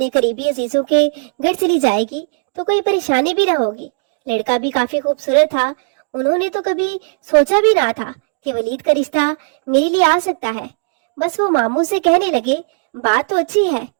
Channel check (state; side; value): silent; left; digital silence